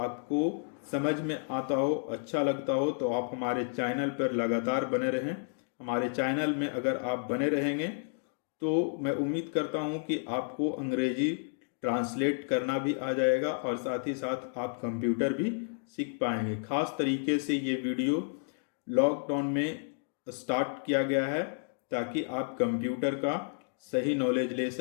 समझ में आता हो, अच्छा लगता हो, तो आप हमारे चैनल पर लगातार बने रहें। हमारे चैनल में अगर आप बने रहेंगे तो मैं उम्मीद करता हूं कि आपको अंग्रेजी ट्रांसलेट करना भी आ जाएगा, और साथ ही साथ आप कंप्यूटर भी सीख पाएंगे। खास तरीके से ये वीडियो लॉकडाउन में स्टार्ट किया गया है ताकि आप कंप्यूटर का सही नॉलेज ले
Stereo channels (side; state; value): right; silent; digital silence